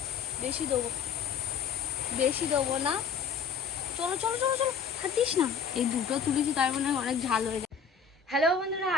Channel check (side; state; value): right; quieter; 6.4 dB